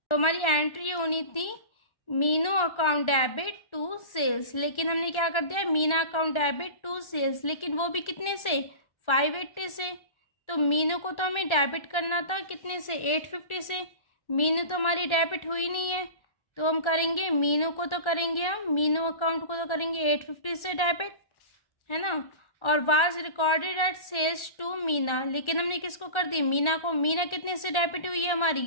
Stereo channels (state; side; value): late; right; 1.3 ms